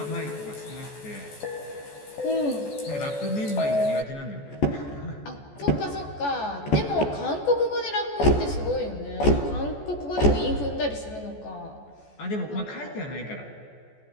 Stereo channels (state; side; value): late; right; 14 ms